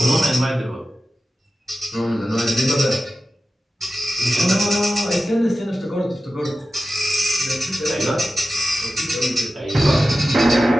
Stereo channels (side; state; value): both; normal; correlation 0.93